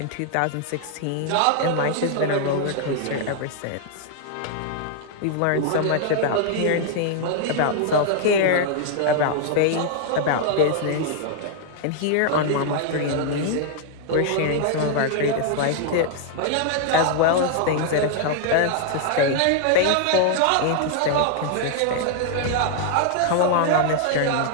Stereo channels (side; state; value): both; different; correlation 0.00